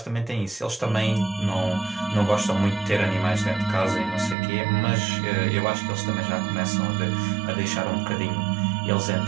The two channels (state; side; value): drops out; left; at 4.4 s